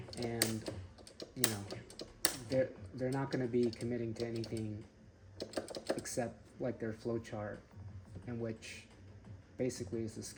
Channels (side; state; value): both; identical; correlation 1.00